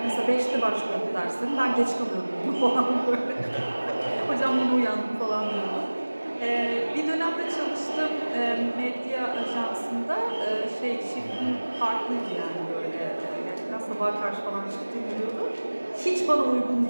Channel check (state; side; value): inverted; both; correlation -1.00